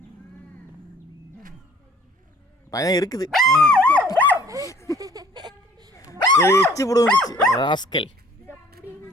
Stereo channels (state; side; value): normal; both; correlation 0.56